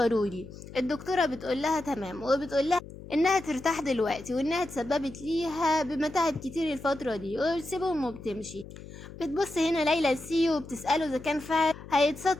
الدكتورة بتقول لها تمام، وبتقول لها انها ترتاح دلوقتي وانها تسببت ليها بمتاعب كتير الفترة دي، وبتسيبهم وبتمشي. بتبص هنا ليلى لسيو وبتسأله اذا كان فعلا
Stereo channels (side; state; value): left; noise; hum, 15 dB below the sound